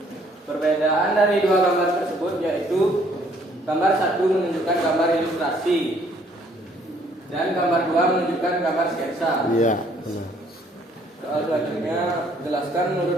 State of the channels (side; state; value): both; normal; correlation 0.63